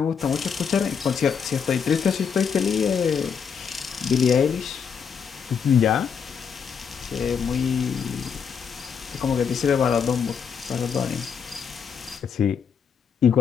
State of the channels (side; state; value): right; quieter; 6.8 dB